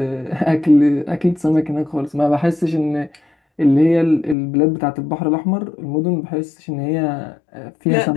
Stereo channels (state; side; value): drops out; right; at 4.4 s